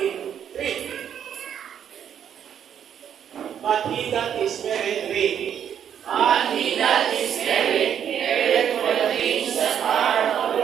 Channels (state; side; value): quieter; left; 8.9 dB